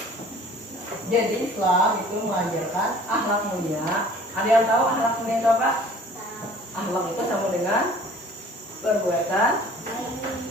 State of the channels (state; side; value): normal; both; correlation 0.50